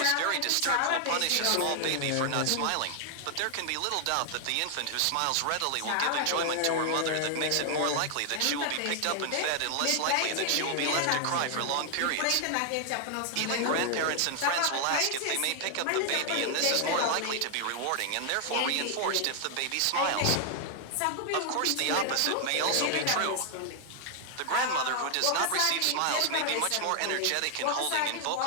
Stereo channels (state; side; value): different; both; correlation 0.00